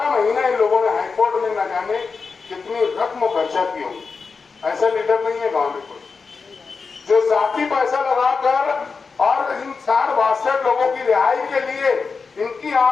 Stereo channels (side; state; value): right; quieter; 4.9 dB